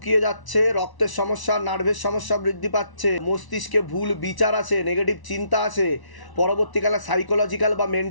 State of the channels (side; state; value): right; late; 1.1 ms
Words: যাচ্ছে, রক্তের সমস্যা, নার্ভের সমস্যা বৃদ্ধি পাচ্ছে, মস্তিষ্কে ভুল বিচার আছে, নেগেটিভ চিন্তা আছে, পরবর্তীকালে সাইকোলজিক্যাল বা